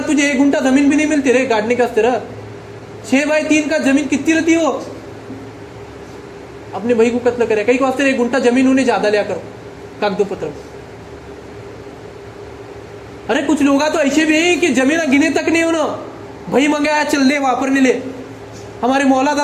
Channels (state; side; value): identical; both; correlation 1.00